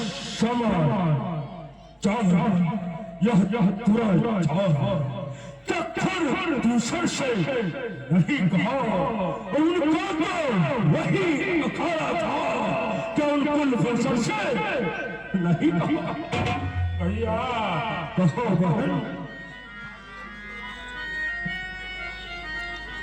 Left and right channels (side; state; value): both; identical; correlation 1.00